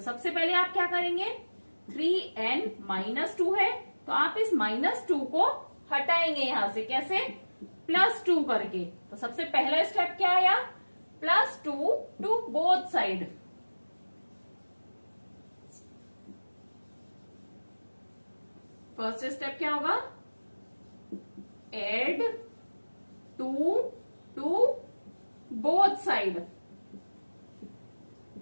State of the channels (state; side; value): inverted; both; correlation -1.00